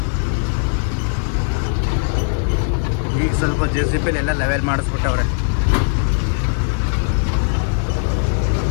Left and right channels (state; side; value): silent; right; 63 dB below the other